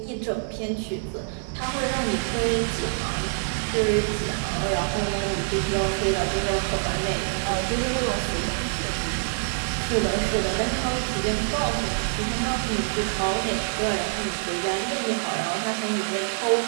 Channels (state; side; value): silent; left; digital silence